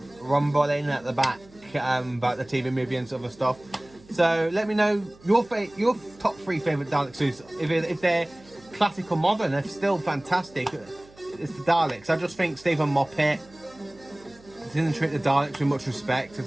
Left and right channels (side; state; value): right; noise; hum, 25 dB below the sound